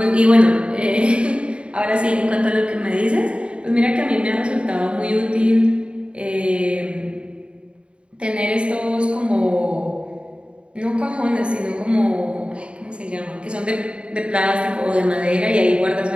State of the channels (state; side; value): late; left; 0.056 ms